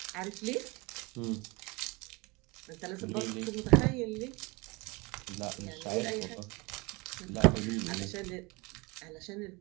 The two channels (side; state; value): left; quieter; 26.1 dB